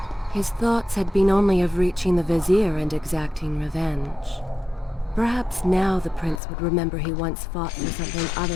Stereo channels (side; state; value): right; drops out; at 6.4 s